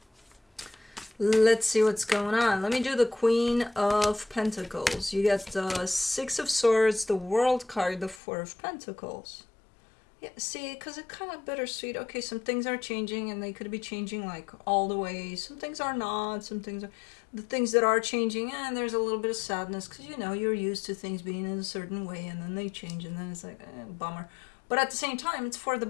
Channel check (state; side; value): drops out; right; at 8.2 s